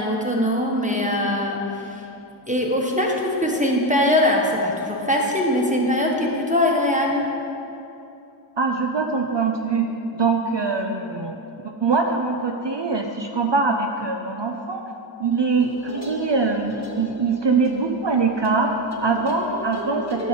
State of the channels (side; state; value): both; normal; correlation 0.13